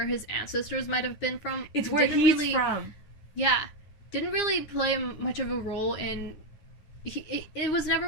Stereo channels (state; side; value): late; right; 9.8 ms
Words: his ancestors might have been from. It's where he's from. Yeah. Didn't really play much of a role in it was never